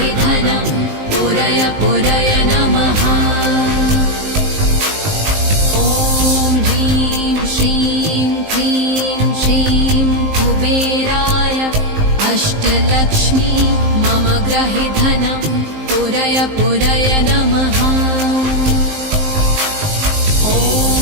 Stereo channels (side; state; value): left; late; 19 ms